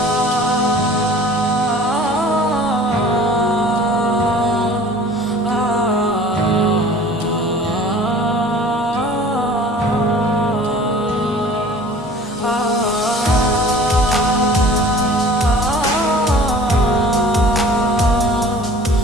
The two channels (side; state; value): both; normal; correlation 0.46